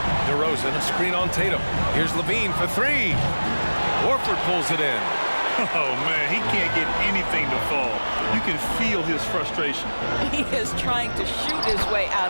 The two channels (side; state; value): both; inverted; correlation -1.00